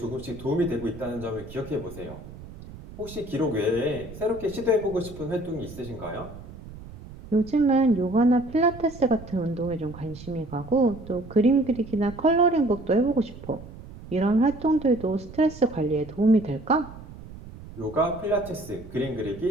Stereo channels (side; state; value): right; noise; rumble, 15 dB below the sound